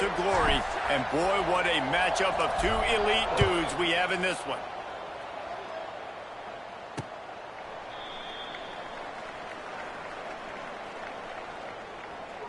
glory. And boy, what a matchup of two elite dudes we have in this one.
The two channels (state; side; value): identical; both; correlation 1.00